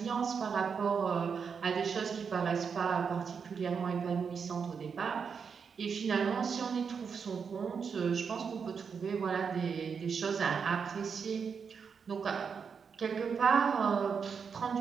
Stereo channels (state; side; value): quieter; left; 6.2 dB